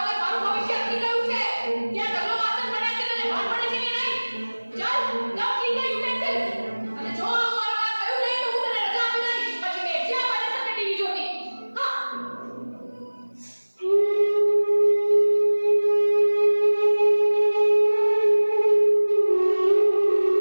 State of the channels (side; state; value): both; inverted; correlation -1.00